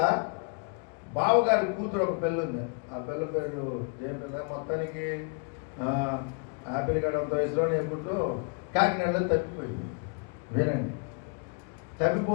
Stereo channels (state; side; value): quieter; right; 39.1 dB